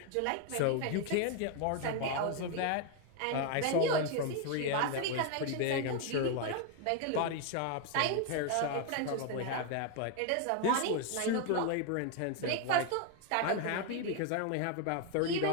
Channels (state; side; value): different; both; correlation 0.01